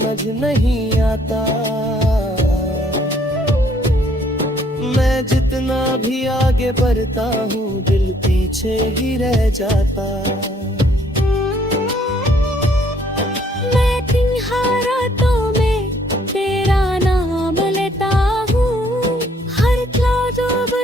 नहीं आता। मैं जितना भी आगे बढ़ता हूँ दिल पीछे ही रह जाता।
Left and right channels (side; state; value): both; normal; correlation 0.65